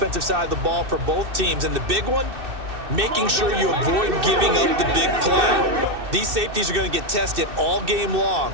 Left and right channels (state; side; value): late; left; 2.6 ms